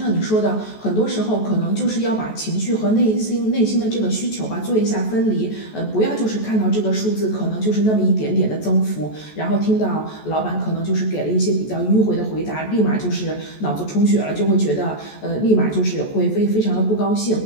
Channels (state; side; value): late; right; 14 ms